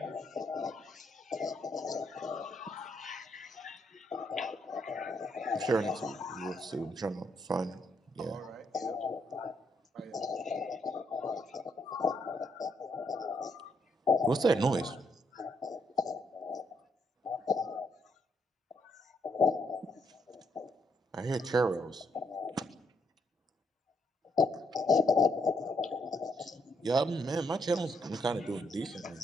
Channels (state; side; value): normal; both; correlation 0.75